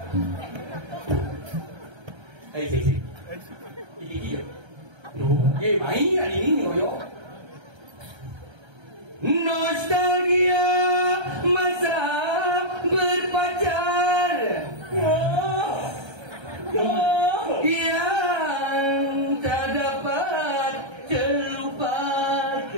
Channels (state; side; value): late; left; 1.3 ms